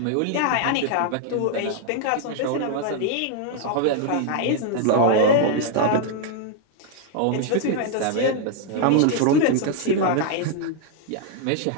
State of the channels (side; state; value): both; different; correlation 0.00